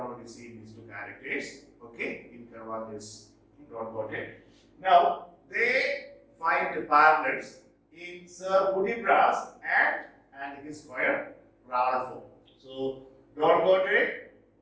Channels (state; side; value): identical; both; correlation 1.00